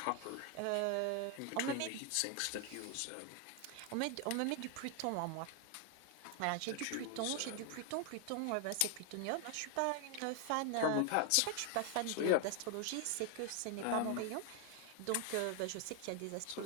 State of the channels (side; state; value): both; different; correlation 0.01